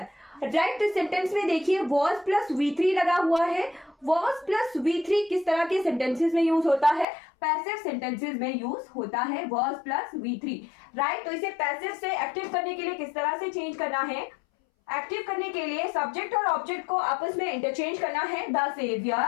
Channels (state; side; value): drops out; right; at 7.1 s